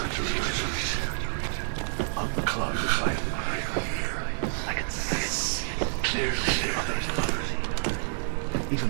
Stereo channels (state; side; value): silent; left; digital silence